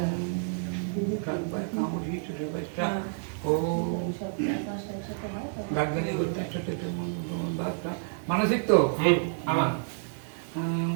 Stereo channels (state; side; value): silent; left; digital silence